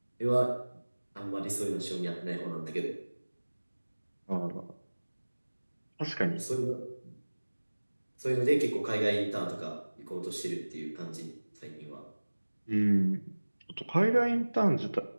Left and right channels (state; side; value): inverted; both; correlation -1.00